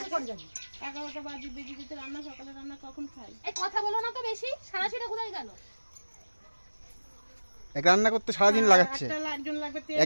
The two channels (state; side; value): inverted; both; correlation -1.00